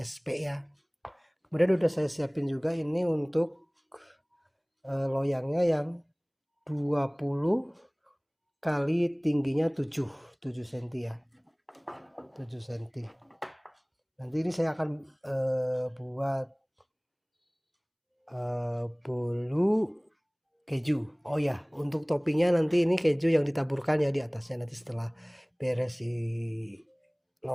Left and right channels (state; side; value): identical; both; correlation 1.00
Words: ya. Kemudian udah saya siapin juga ini untuk loyangnya yang 20 kali tingginya 7 cm ya, 7 cm. Nanti ini saya akan buat bolu keju. Oh ya, untuk toppingnya nanti ini keju yang ditaburkan ya di atasnya, nanti setelah beres